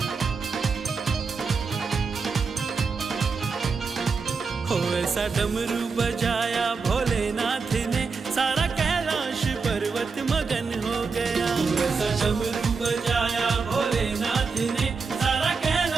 हो ऐसा डमरू बजाया भोलेनाथ ने, सारा कैलाश पर्वत मगन हो गया। ऐसा डमरू बजाया भोलेनाथ ने, सारा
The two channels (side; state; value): left; quieter; 4.9 dB